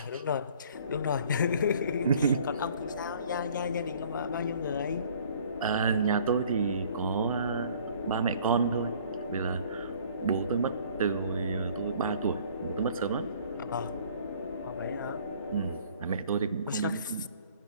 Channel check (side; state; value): both; inverted; correlation -0.55